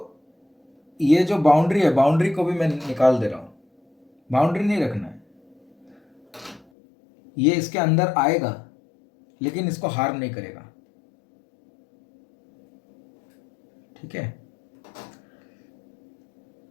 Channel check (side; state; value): right; drops out; at 6.7 s